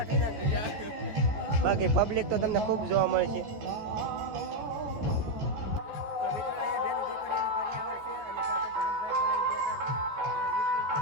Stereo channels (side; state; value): left; late; 14 ms